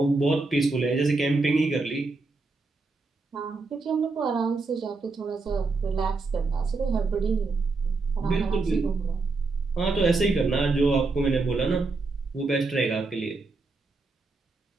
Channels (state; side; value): quieter; left; 3.7 dB